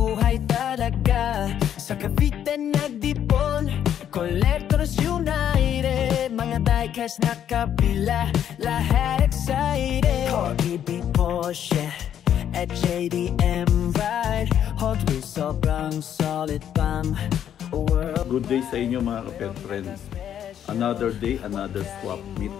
talaga. Sa Cavite nagdipon, Collectors United, mga diecast na kabila, lahat excited. Corgi, Porsche, at JDM Ride, Hot Wheels sobrang solid pang world. Good day sa inyo mga kapet friends. Another day, another swap meet.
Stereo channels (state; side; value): quieter; right; 9.8 dB